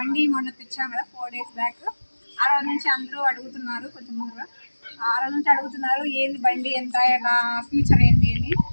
మొన్న తెచ్చాను కదా 4 days బ్యాక్. ఆ రోజు నుంచి అందరూ అడుగుతున్నారు, కొంచెం ముందుగా ఆ రోజు నుంచి అడుగుతున్నారు ఏంది బండి, ఎంత ఎలా ఫ్యూచర్ ఏంటి అని.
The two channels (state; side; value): inverted; both; correlation -1.00